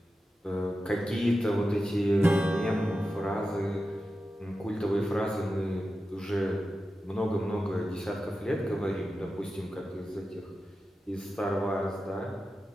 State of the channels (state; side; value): normal; both; correlation 0.92